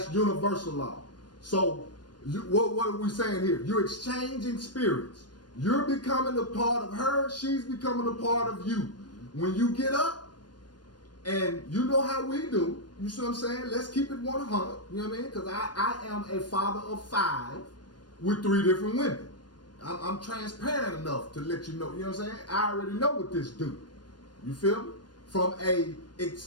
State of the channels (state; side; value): late; right; 0.70 ms